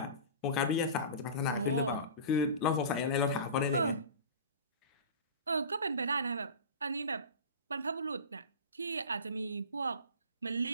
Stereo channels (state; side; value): inverted; both; correlation -0.33